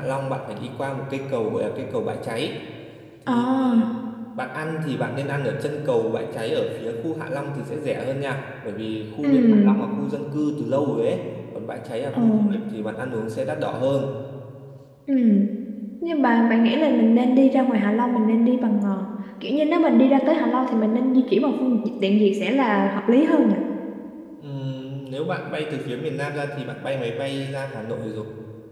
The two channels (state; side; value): identical; both; correlation 1.00